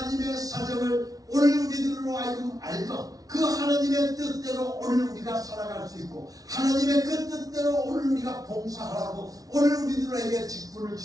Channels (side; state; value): left; late; 0.18 ms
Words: 사정을 오늘 우리들로 하여금 알고 그 하나님의 뜻대로 오늘 우리가 살아갈 수 있고, 하나님의 그 뜻대로 오늘 우리가 봉사하라고 오늘 우리들에게 직분을